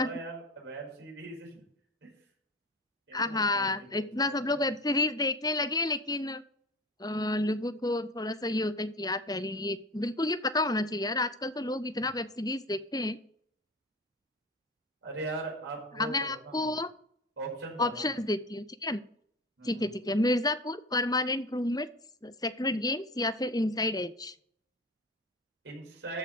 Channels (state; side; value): normal; both; correlation 0.31